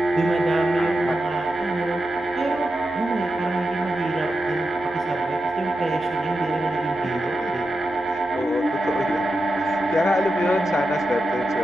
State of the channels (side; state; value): both; normal; correlation 0.89